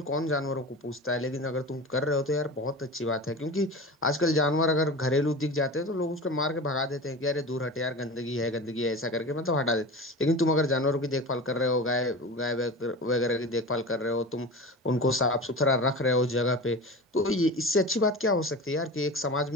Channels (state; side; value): normal; both; correlation 0.32